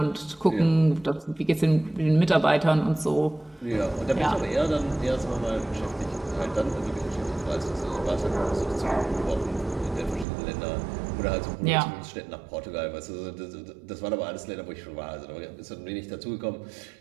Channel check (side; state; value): left; drops out; at 10.2 s